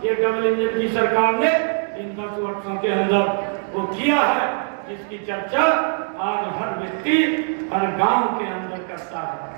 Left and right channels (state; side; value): silent; left; 64 dB below the other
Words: ये डबल इंजन की सरकार ने इन 10 वर्षों के अंदर वो किया है, जिसकी चर्चा आज हर व्यक्ति हर गांव के अंदर करता है।